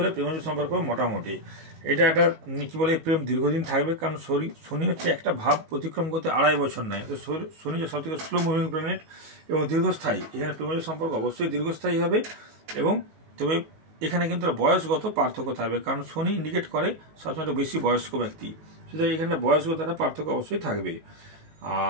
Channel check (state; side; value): late; left; 19 ms